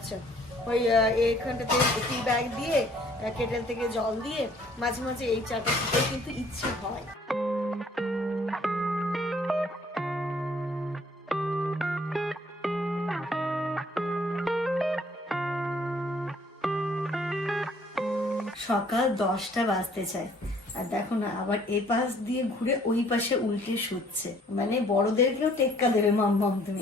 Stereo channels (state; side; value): normal; both; correlation 0.60